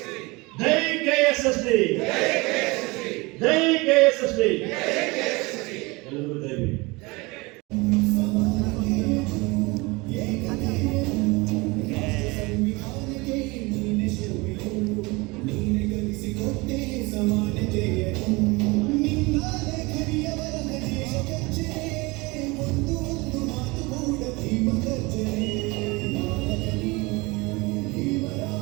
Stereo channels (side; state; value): left; quieter; 24.7 dB